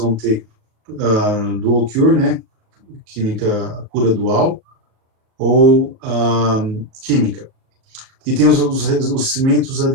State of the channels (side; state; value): left; late; 37 ms